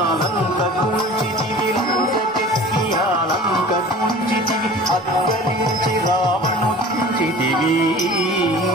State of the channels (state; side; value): normal; both; correlation 0.42